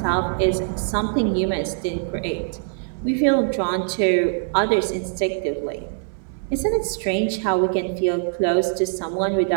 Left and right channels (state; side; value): silent; left; digital silence